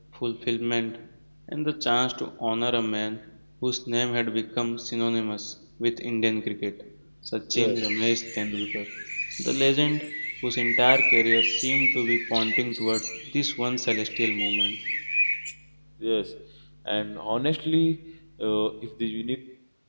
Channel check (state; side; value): inverted; both; correlation -1.00